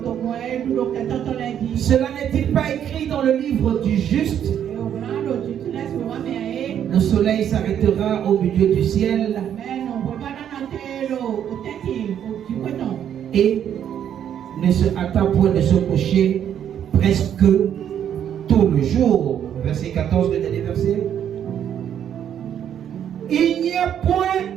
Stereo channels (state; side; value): quieter; left; 9.5 dB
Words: Cela n'est-il pas écrit dans le livre du juste? Le soleil s'arrêtera au milieu du ciel et ne se hâta point de se coucher presque tout le jour. Verset 14, le dernier verset. Il n'y a point